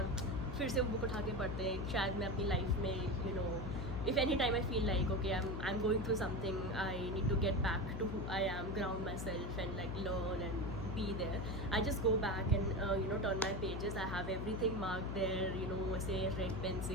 फिर से वो book उठा के पढ़ते हैं, शायद मैं अपनी लाइफ में, you know, if any time I feel like, okay, I'm going through something, I need to get back to who I am, ground myself and like learn and be there, I just go back and you know, turn my pages. I have everything marked there, you know, say red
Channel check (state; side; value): noise; left; hum, 4 dB below the sound